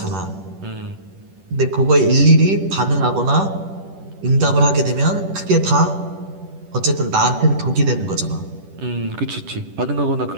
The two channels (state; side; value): late; left; 10 ms